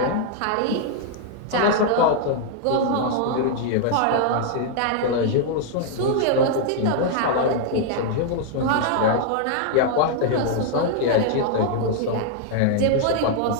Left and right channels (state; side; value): different; both; correlation 0.00